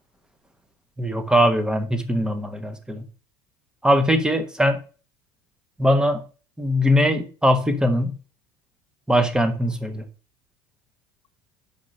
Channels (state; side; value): normal; both; correlation 0.80